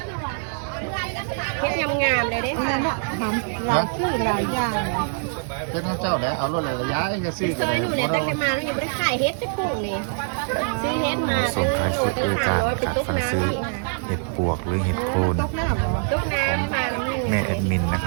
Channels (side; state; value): left; silent; digital silence